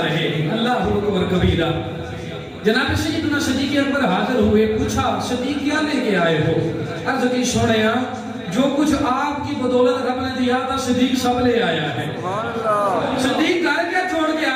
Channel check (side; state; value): both; identical; correlation 1.00